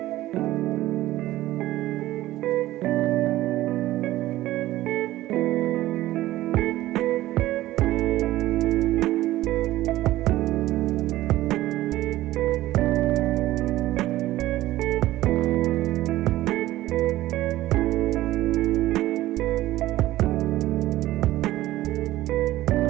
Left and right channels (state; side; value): quieter; left; 15.8 dB